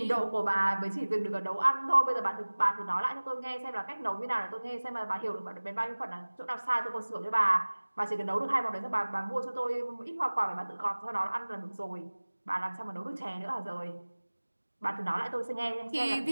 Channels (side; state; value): both; inverted; correlation -1.00